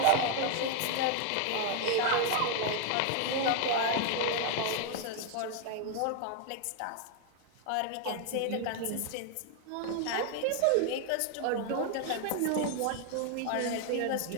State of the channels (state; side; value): different; both; correlation 0.00